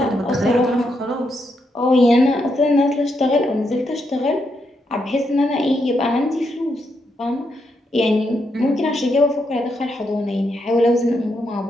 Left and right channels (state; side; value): normal; both; correlation 0.80